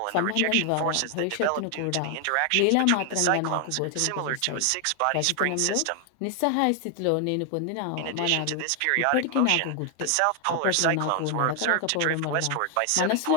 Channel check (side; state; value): both; different; correlation 0.00